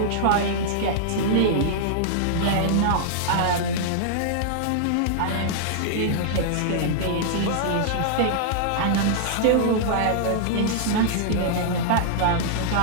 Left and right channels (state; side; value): different; both; correlation -0.01